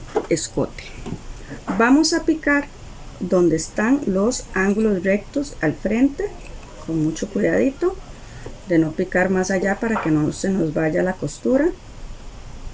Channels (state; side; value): identical; both; correlation 1.00